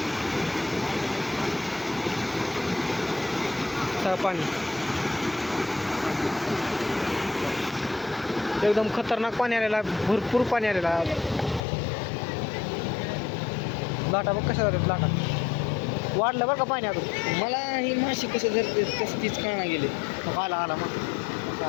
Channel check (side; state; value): right; drops out; at 11.6 s